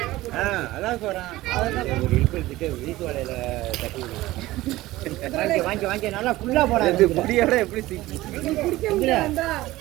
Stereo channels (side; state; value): left; quieter; 17.5 dB